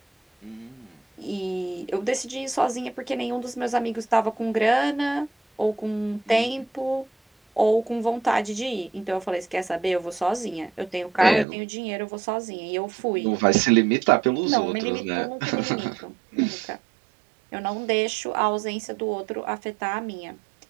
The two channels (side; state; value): left; drops out; at 11.5 s